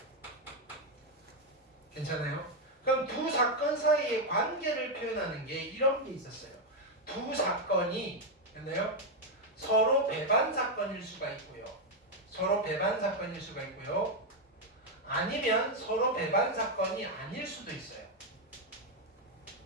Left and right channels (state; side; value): normal; both; correlation 0.03